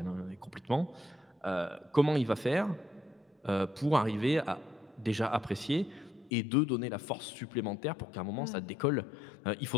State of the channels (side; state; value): right; drops out; at 6.3 s